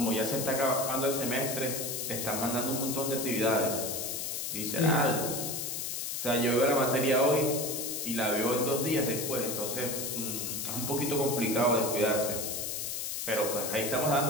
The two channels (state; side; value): noise; left; hiss, 3 dB below the sound